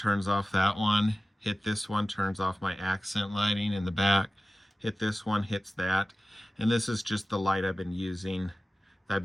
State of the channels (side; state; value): both; normal; correlation 0.96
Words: off that one, hit this one, turns off my accent lighting in the back, hit this one, hits that. And this is just the light I've been using I've